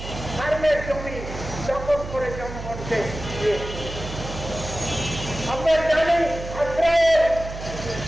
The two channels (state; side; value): noise; right; hum, 9 dB below the sound